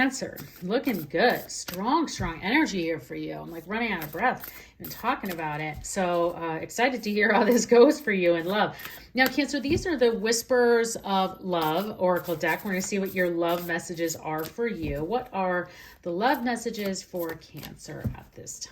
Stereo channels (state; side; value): identical; both; correlation 1.00